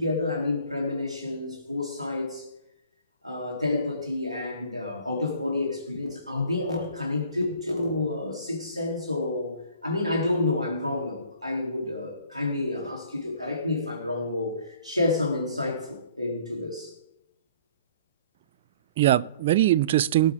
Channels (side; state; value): both; inverted; correlation -0.51